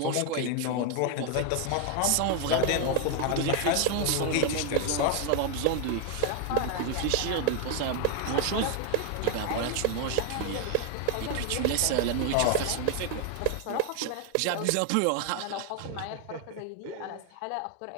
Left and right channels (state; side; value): different; both; correlation 0.01